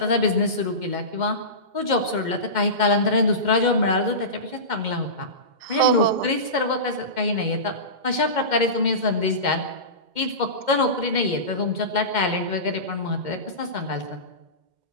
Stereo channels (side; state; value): left; late; 2.1 ms